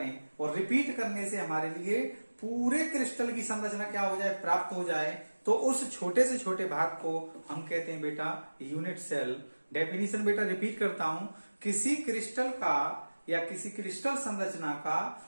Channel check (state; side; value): inverted; both; correlation -1.00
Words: और रिपीट करने से हमारे लिए पूरे क्रिस्टल की संरचना क्या हो जाए, प्राप्त हो जाए, तो उस छोटे से छोटे भाग को हम कहते हैं बेटा यूनिट सेल। डेफिनेशन बेटा रिपीट करता हूं, किसी क्रिस्टल का या किसी क्रिस्टल संरचना का